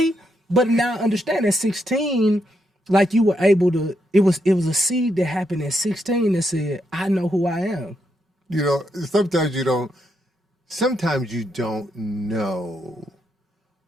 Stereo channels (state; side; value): normal; both; correlation 0.80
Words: But now I understand at 16, like you were able to, it was a seed that happened at 16 that said, I know who I am. You know, sometimes you don't know